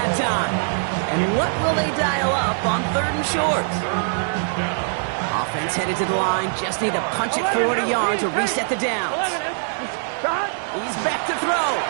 time. And what will they dial up on 3rd and short? Offense headed to the line. Just need to punch it 40 yards to reset the downs. He's back to throw.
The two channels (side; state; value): left; silent; 64 dB below the other